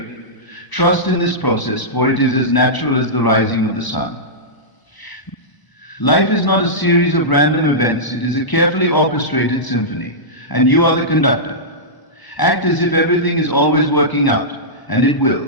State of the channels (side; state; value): right; late; 1.0 ms